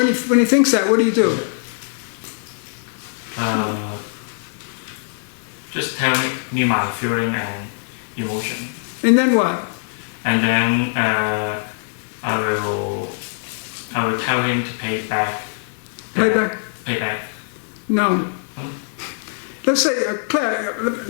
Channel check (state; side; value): silent; right; digital silence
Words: he thinks that, what do you do? Just tell me my feeling and emotion. And then what? And then I will tell him to pay back. Pay back? Pay back. No. Let's say,